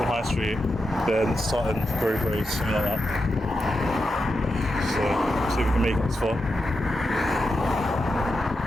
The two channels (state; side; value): normal; both; correlation 0.88